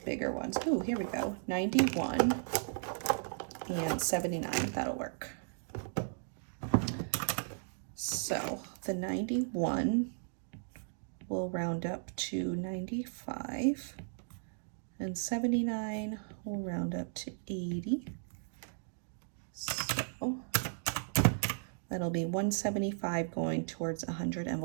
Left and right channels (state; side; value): silent; left; digital silence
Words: bigger ones. Oh, here we go. 91 and 79, that'll work. So the 91 will round up to 95 and 79 will round up to 80. So that'll be 175 going towards 100